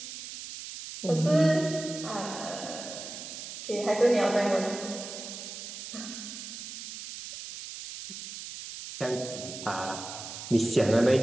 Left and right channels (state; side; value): noise; right; hiss, 10 dB below the sound